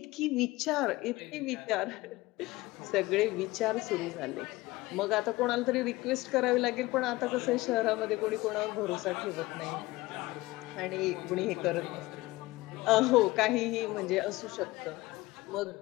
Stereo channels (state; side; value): quieter; right; 19.8 dB